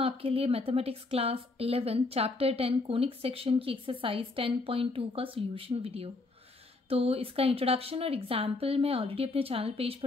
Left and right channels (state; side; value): quieter; right; 3.3 dB